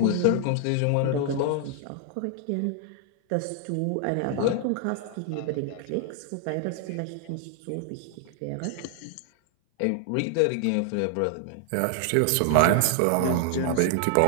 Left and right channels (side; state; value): both; different; correlation 0.00